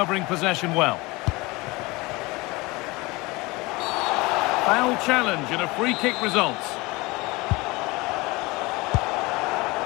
possession well. Foul challenge and a free kick results.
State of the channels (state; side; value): quieter; right; 23.3 dB